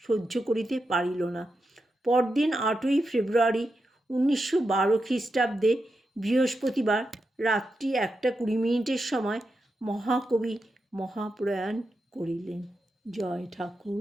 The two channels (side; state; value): both; normal; correlation 0.87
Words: সহ্য করিতে পারিল না। পরদিন 8ই ফেব্রুয়ারি 1912 খ্রিস্টাব্দে বৃহস্পতিবার রাত্রি 1:20 সময় মহাকবি মহাপ্রয়াণ করিলেন। জয়